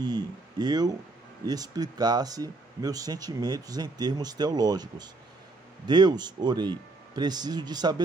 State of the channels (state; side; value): quieter; left; 3.3 dB